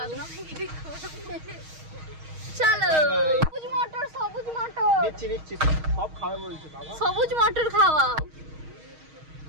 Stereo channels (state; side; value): late; left; 6.4 ms